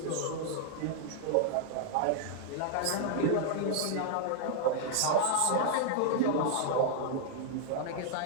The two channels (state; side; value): different; both; correlation -0.01